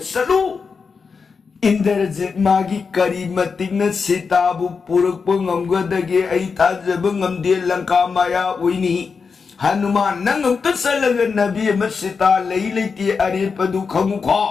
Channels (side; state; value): right; quieter; 5.3 dB